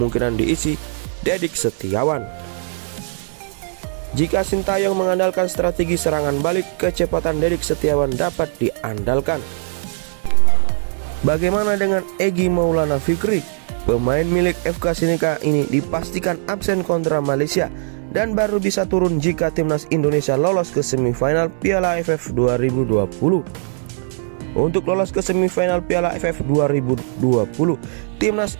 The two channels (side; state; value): left; silent; 66 dB below the other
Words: diisi Dedik Setiawan. Jika Sintayong mengandalkan strategi serangan balik, kecepatan Dedik Setiawan dapat diandalkan. Bagaimana dengan Egy Maulana Fikri? Pemain milik FK Sinika ini dipastikan absen kontra Malaysia dan baru bisa turun jika Timnas Indonesia lolos ke semifinal Piala AFF 2020. Untuk lolos ke semifinal Piala AFF 2020, Timnas